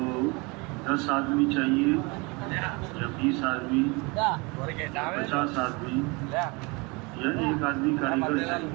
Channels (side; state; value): left; quieter; 27.7 dB